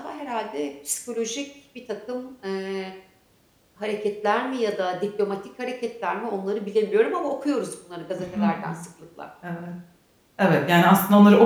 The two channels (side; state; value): both; identical; correlation 1.00